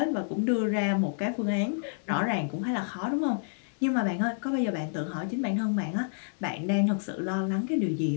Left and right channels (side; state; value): right; silent; digital silence